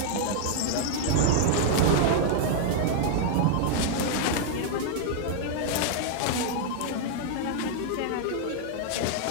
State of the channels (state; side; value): different; both; correlation -0.01